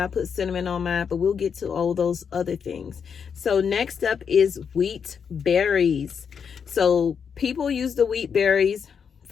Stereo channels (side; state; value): right; quieter; 6.8 dB